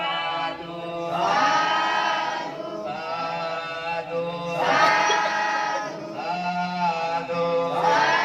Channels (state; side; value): identical; both; correlation 1.00